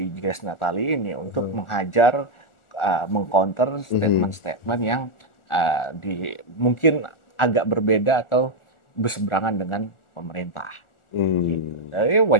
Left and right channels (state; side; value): late; right; 1.4 ms